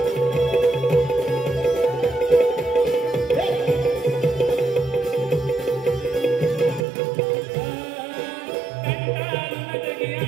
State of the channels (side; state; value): left; drops out; at 6.8 s